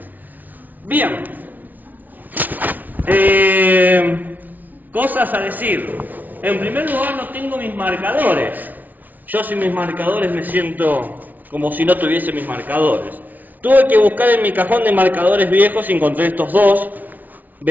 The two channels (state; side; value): late; left; 0.080 ms